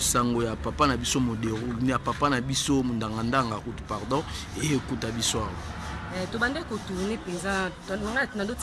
sango ya papa na biso modero ni ya papa na biso mundangandanga kutu pardon et écoute biso to bande ko tourner penza na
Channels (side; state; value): both; identical; correlation 1.00